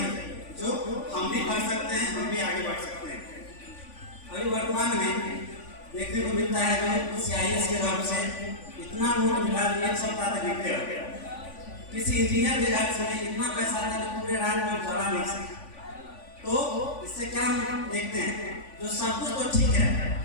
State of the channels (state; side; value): late; right; 3.5 ms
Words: जो हम भी कर सकते हैं, हम भी आगे बढ़ सकते हैं। अभी वर्तमान में देखने को मिलता है जो CIS के घर से इतना नोट मिला, एक सप्ताह तक गिरते हो गया। किसी इंजीनियर के घर से इतना पैसा था कि पूरे रात में जला नहीं सका। तो इससे क्या हम देखते हैं, जो सब कुछ तो ठीक है,